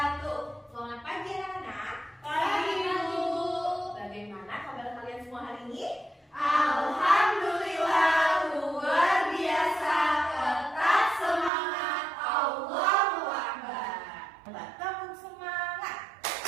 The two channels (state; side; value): drops out; left; at 11.5 s